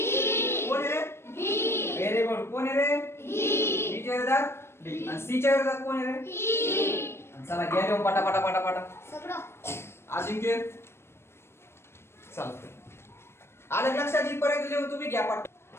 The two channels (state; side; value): late; right; 0.12 ms